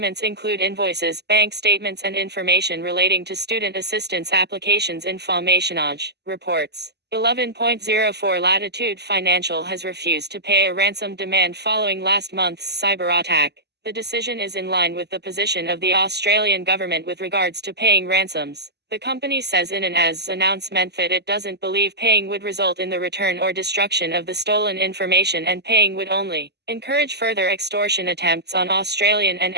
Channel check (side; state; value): left; late; 0.49 ms